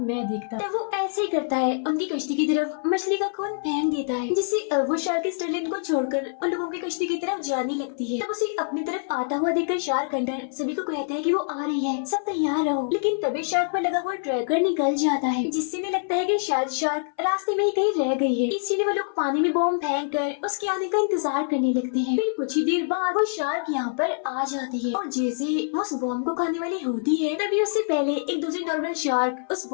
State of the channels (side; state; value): right; silent; 59 dB below the other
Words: मैं देखता तो वो ऐसे ही करता है, उनकी कश्ती की तरफ मछली का खून फेंक देता है, जिससे अब वो शार्क स्टर्लिन को छोड़कर उन लोगों की कश्ती की तरफ जाने लगती है। तब उसे अपनी तरफ आता हुआ देखकर शार्क हंटर सभी को कहता है कि वो आ रही है, सब तैयार रहो। लेकिन तभी शार्क पर लगा हुआ ट्रैकर निकल जाता है, जिससे इन्हें लगता है कि शायद शार्क रास्ते में ही कहीं रह गई है। इसीलिए वो लोग पानी में बॉम्ब फेंक कर उसके आने का इंतजार करने लगते हैं। फिर कुछ ही देर बाद वो शार्क यहाँ पर आ जाती है और जैसे वो उस बॉम्ब को खाने वाली होती है तभी उससे पहले एक दूसरी नॉर्मल शार्क उस